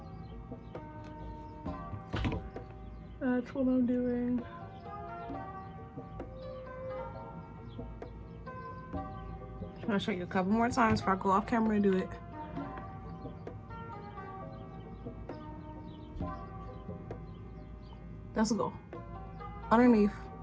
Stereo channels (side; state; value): both; identical; correlation 1.00